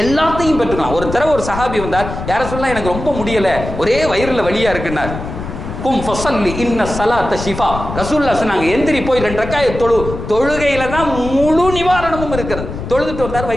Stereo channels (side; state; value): left; noise; rumble, 8 dB below the sound